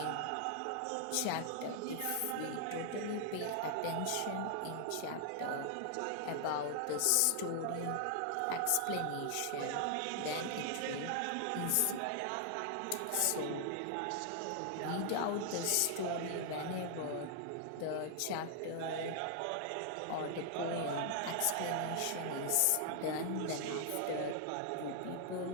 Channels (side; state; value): both; different; correlation 0.00